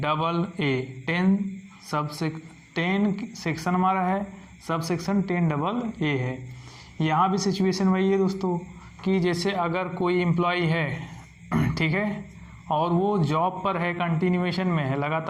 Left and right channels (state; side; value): identical; both; correlation 1.00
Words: सेक्शन हमारा है, सब सेक्शन 10AA है। यहाँ भी सिचुएशन वही है दोस्तों कि जैसे अगर कोई एम्प्लॉई है, ठीक है, और वो जॉब पर है, कंटिन्यूएशन में है,